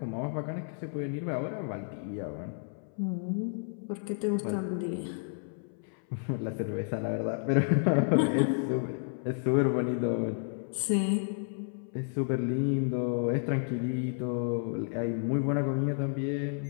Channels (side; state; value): right; silent; 57 dB below the other